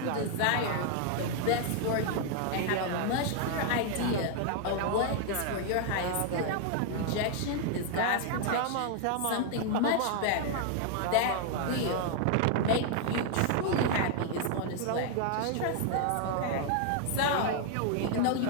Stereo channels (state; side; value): different; both; correlation 0.00